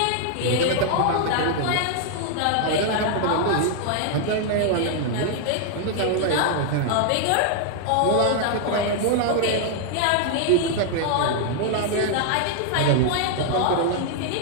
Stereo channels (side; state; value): both; different; correlation 0.00